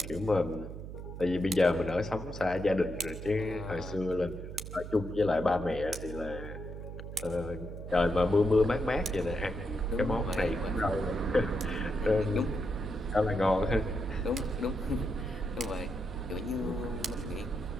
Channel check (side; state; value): right; noise; hum, 9 dB below the sound